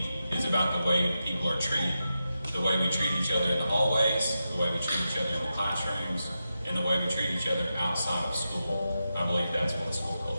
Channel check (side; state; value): both; inverted; correlation -0.89